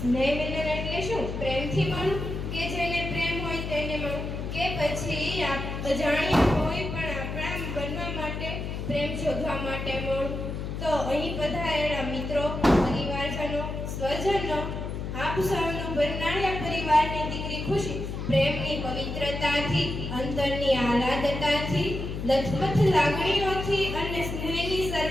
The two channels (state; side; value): noise; left; hum, 5 dB below the sound